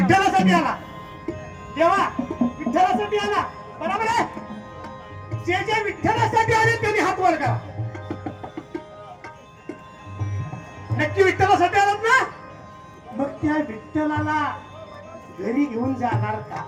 आला. देवा विठ्ठलासाठी आला, बरोबर आहे. जे जे विठ्ठलासाठी आले त्यांनी हात वर करा. नक्की विठ्ठलासाठी आलात ना? मग त्या विठ्ठलाला घरी घेऊन जाणार का?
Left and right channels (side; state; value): both; identical; correlation 1.00